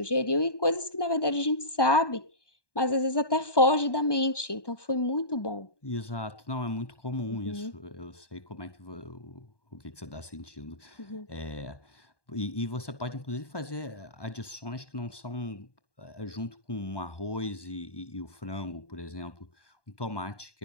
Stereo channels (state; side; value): late; right; 1.2 ms